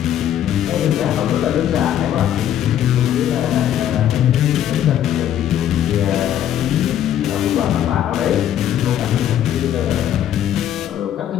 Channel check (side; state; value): right; quieter; 10.8 dB